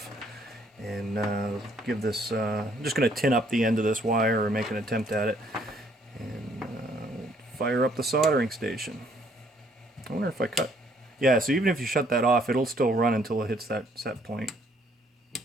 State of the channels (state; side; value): normal; both; correlation 0.65